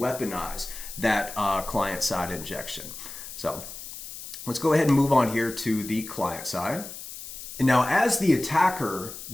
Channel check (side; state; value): left; noise; hiss, 11 dB below the sound